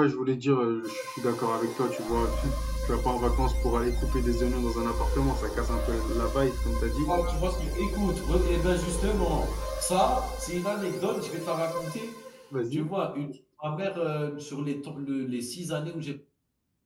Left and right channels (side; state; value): both; identical; correlation 1.00